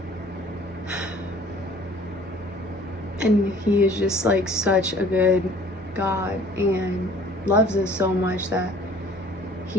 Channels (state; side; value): normal; both; correlation 0.52